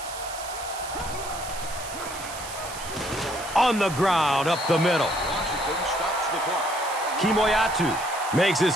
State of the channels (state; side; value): noise; right; hiss, 11 dB below the sound